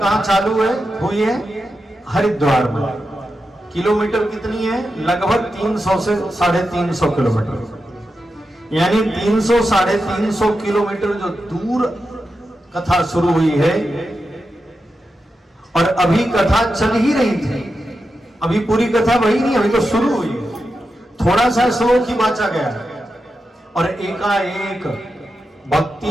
चालू है, हुई है? हरिद्वार में। किलोमीटर कितनी है? लगभग 300 से 350 किलोमीटर, यानी 300 350 किलोमीटर जो दूर कथा शुरू हुई है, और अभी कथा चल ही रही थी, अभी पूरी कथा वही नहीं, अभी तो शुरू हुई है, थोड़ा सा श्लोक ही बांचा गया है। और एकाएक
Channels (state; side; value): normal; both; correlation 0.89